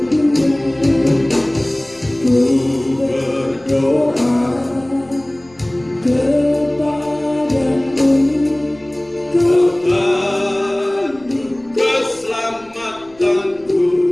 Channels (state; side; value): noise; left; rumble, 29 dB below the sound